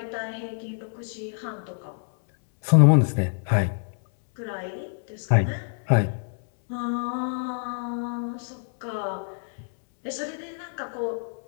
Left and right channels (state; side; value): silent; right; 61 dB below the other